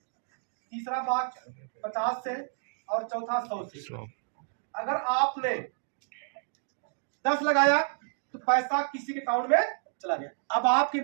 तीसरा भाग 50 से, और चौथा 100 से। अगर आपने 10 लगाया तो पैसा किसी के अकाउंट में चला गया। अब आपके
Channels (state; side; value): silent; left; digital silence